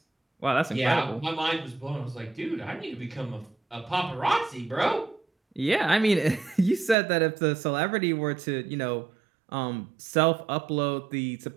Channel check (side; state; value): left; drops out; at 7.0 s